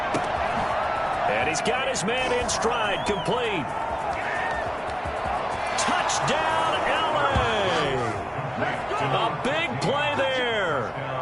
And he's got his man in stride, complete. Touchdown, LA! A big play there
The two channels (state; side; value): identical; both; correlation 1.00